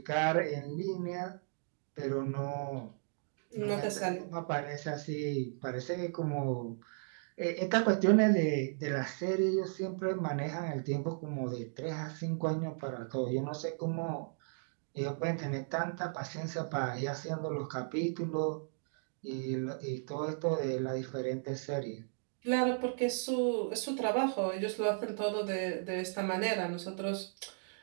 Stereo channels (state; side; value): silent; left; digital silence